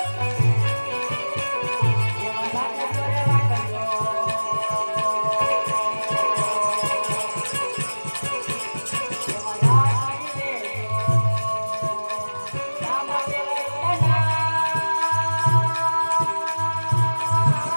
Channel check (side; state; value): both; inverted; correlation -1.00